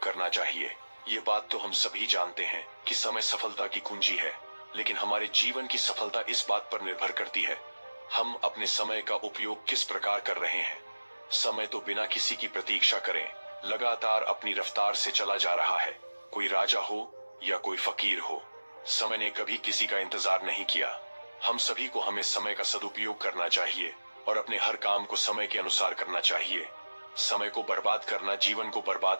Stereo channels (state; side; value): inverted; both; correlation -1.00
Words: करना चाहिए। ये बात तो हम सभी जानते हैं कि समय सफलता की कुंजी है, लेकिन हमारे जीवन की सफलता इस बात पर निर्भर करती है हम अपने समय का उपयोग किस प्रकार कर रहे हैं। समय तो बिना किसी की प्रतीक्षा करें लगातार अपनी रफ्तार से चला जा रहा है। कोई राजा हो या कोई फकीर हो, समय ने कभी किसी का इंतजार नहीं किया। हम सभी को हमें समय का सदुपयोग करना चाहिए और अपने हर काम को समय के अनुसार करना चाहिए। समय को बर्बाद करना जीवन को बर्बाद